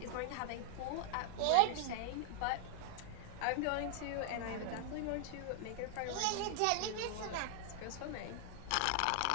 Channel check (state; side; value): different; both; correlation 0.00